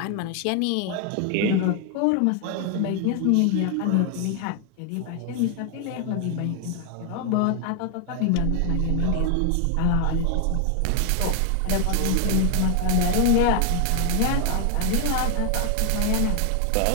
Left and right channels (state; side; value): different; both; correlation 0.00